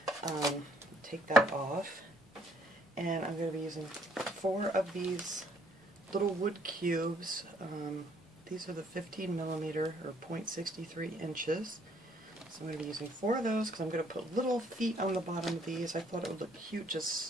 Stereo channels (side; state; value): both; normal; correlation 0.65